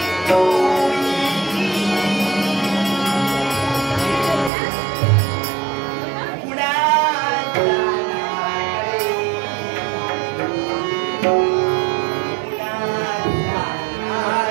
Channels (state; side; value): drops out; left; at 4.5 s